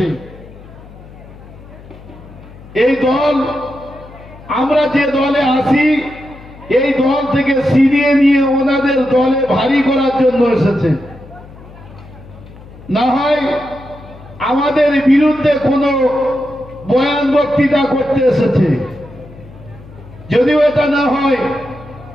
এই দল, আমরা যে দলে আসি, এই দল থেকে ছিনিয়ে নিয়ে ওনাদের দলে ভারী করার জন্য এসেছে। না হয় আমাদের বিরুদ্ধে কোনো বয়ান বক্তৃতা করতে এসেছে। যদিও এটা না হয়,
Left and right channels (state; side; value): noise; left; hum, 19 dB below the sound